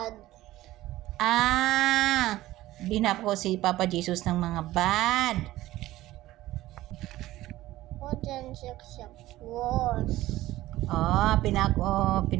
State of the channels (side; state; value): left; quieter; 16.1 dB